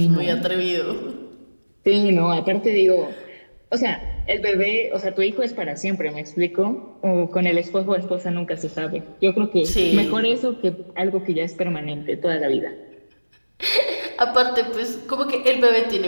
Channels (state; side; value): inverted; both; correlation -1.00